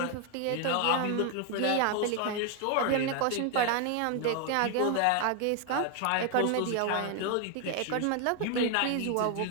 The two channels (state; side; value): different; both; correlation 0.01